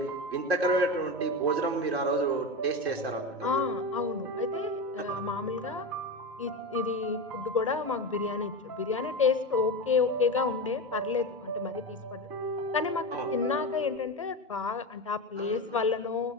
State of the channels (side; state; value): both; normal; correlation 0.20